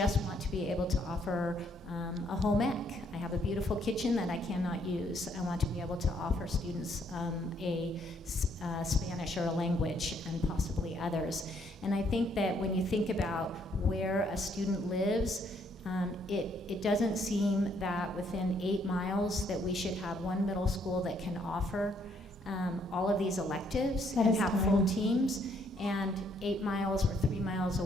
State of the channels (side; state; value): both; normal; correlation 0.69